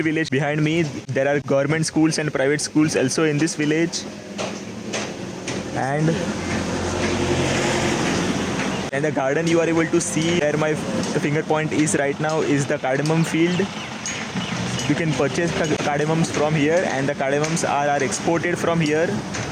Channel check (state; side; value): identical; both; correlation 1.00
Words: behind me. There are government schools and private schools also in this village. And the garden you are able to see where my finger point is right now is the cardamom field. You can purchase cardamoms from here, and the cardamoms are exported from here.